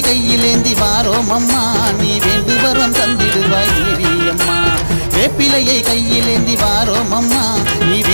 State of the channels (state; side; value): inverted; both; correlation -1.00